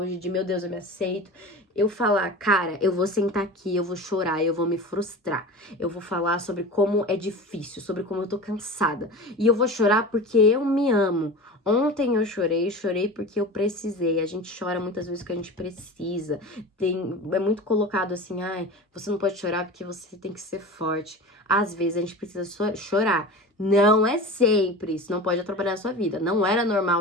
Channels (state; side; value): normal; both; correlation 0.32